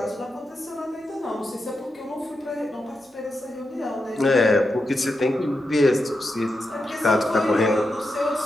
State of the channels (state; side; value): normal; both; correlation 0.87